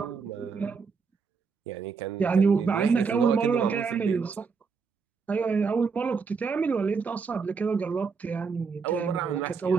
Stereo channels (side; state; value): left; quieter; 5.3 dB